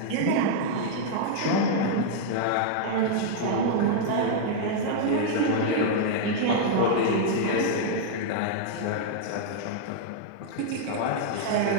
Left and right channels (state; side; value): different; both; correlation -0.01